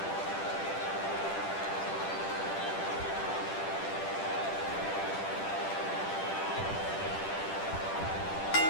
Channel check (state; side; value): late; right; 10 ms